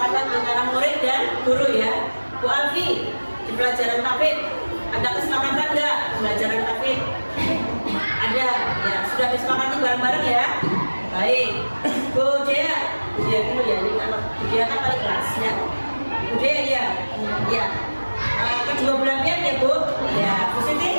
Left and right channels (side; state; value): both; inverted; correlation -1.00